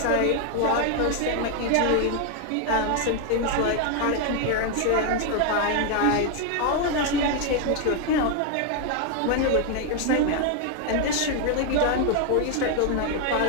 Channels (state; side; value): different; both; correlation 0.01